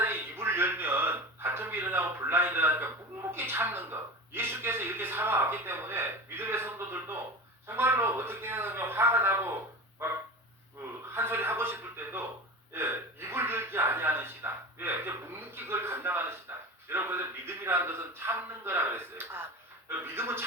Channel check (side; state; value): both; normal; correlation 0.30